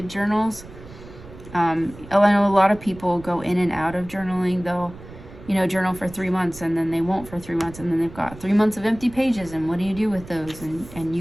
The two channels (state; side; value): noise; right; rumble, 17 dB below the sound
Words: journals. I know a lot of people go in and out of journaling. They'll, journal for 3 months and then they won't for 3 months, and then they've got 3 months of empty pages, and what do you do with those? And